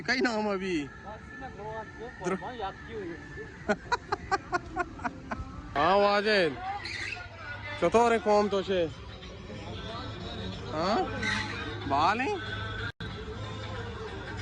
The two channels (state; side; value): identical; both; correlation 1.00